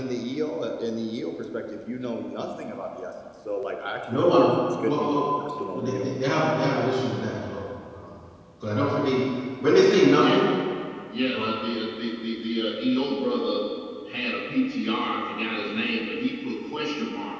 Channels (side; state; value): both; identical; correlation 1.00